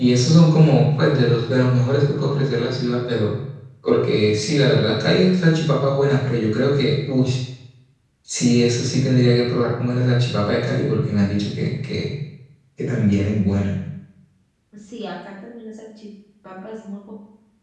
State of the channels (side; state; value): both; identical; correlation 1.00